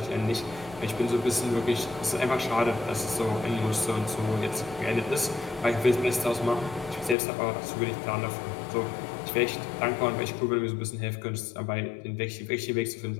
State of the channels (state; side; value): drops out; right; at 7.2 s